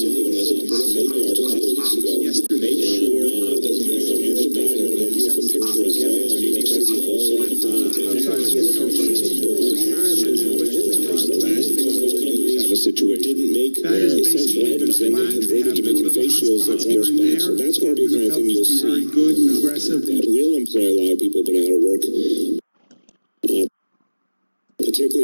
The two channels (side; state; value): both; inverted; correlation -1.00